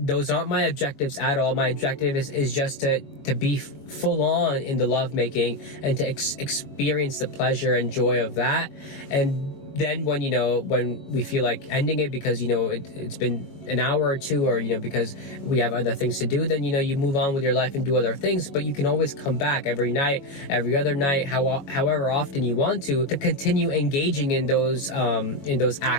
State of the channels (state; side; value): late; right; 21 ms